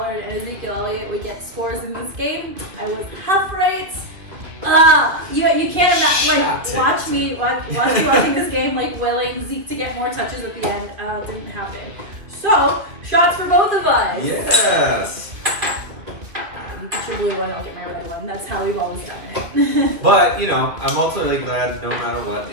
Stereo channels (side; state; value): left; late; 2.8 ms